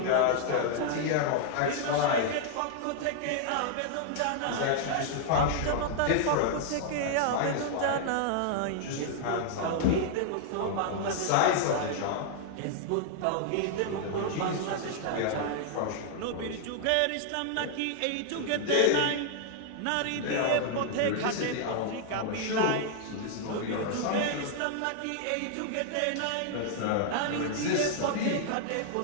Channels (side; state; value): both; different; correlation -0.01